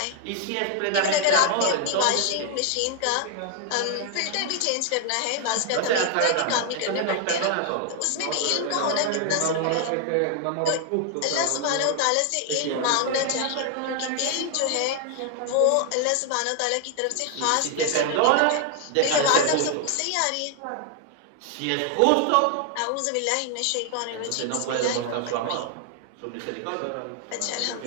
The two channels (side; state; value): both; different; correlation 0.00